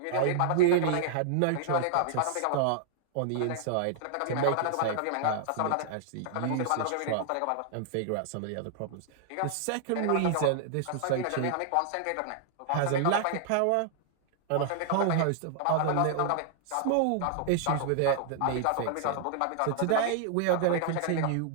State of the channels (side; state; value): both; different; correlation -0.01